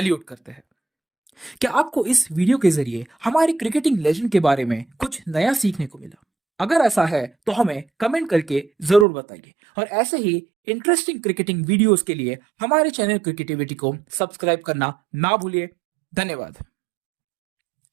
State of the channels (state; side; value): drops out; left; at 9.1 s